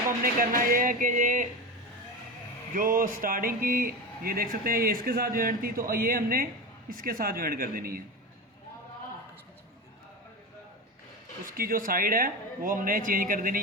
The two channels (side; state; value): both; normal; correlation 0.23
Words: हमने करना ये है कि ये जो स्टार्टिंग की ये देख सकते हैं ये इसके साथ ज्वाइन थी, तो ये हमने इसके साथ ज्वाइन कर देनी है। उसकी जो साइड है वो हमने चेंज कर देनी,